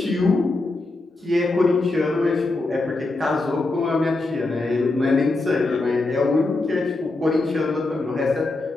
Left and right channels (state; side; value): quieter; right; 3.1 dB